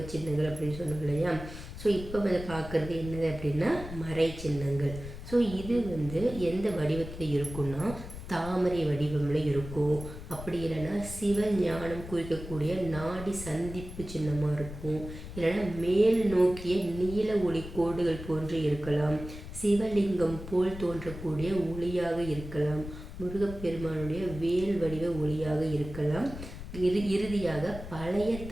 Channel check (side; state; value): left; noise; rumble, 11 dB below the sound